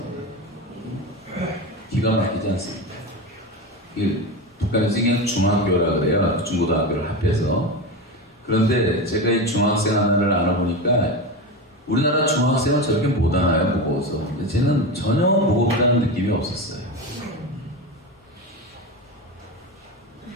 기가 막히지 않습니까? 북한에서 그냥 중학교라 그래요. 중고등학교를 합해서. 그런데 제가 이 중학생 하나를 알아보니까 우리나라 중학생은 저렇게 못 하나요? 무거워서. 근데 쟤는 전혀 무겁다는 느낌이 없었어요.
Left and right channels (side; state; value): both; normal; correlation 0.21